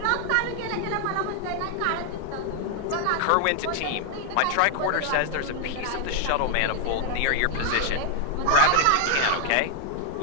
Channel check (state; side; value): different; both; correlation 0.00